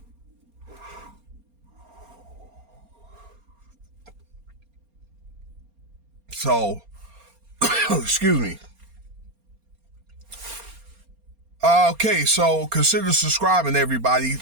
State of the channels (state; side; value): late; left; 4.3 ms